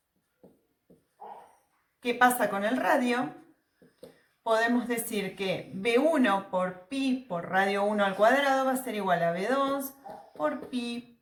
qué pasa con el radio, podemos decir que B1 por pi por radio 1 al cuadrado va a ser igual a B2 por pi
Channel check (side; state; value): both; identical; correlation 1.00